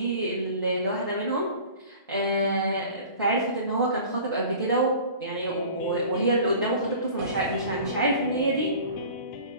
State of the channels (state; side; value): inverted; both; correlation -0.43